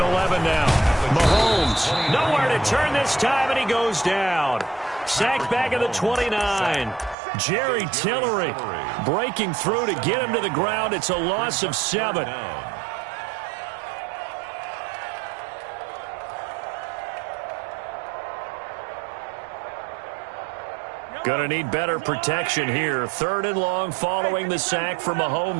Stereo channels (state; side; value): drops out; left; at 7.2 s